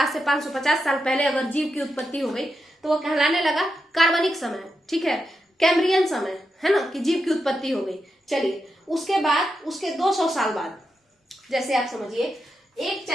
से 550 साल पहले अगर जीव की उत्पत्ति हो गई तो वो कहलाने लगा कार्बनिक समय। ठीक है, कैम्ब्रियन समय, है ना, कि जीव की उत्पत्ति हो गई। चलिए, उसके बाद, उसके 200 साल बाद, जैसे आप समझिए, एक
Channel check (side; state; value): both; normal; correlation 0.86